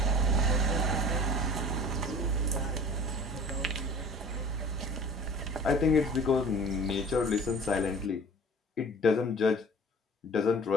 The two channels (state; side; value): normal; both; correlation 0.43